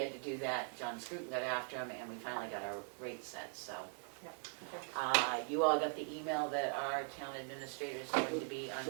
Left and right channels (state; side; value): silent; left; 50 dB below the other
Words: to do that, John Scruton got after him, and we finally got our rate set, so. You all got the email that our town administrator is going to be on